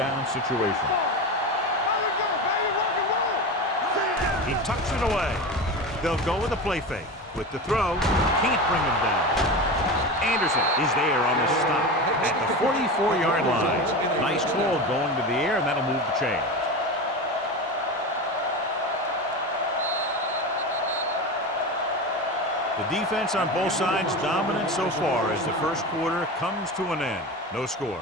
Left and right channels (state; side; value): normal; both; correlation 0.25